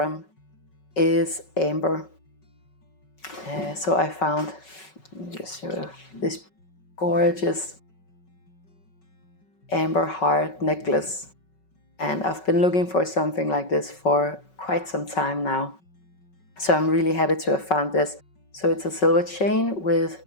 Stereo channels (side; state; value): right; late; 5.3 ms